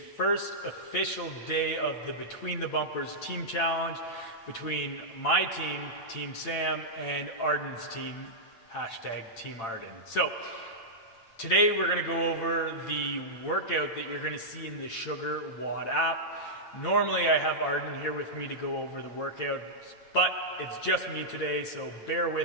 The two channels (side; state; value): right; late; 8.8 ms